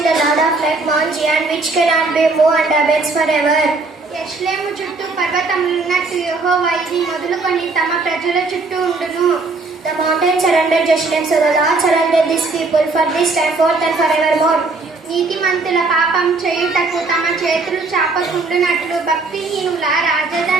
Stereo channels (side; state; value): left; quieter; 3.6 dB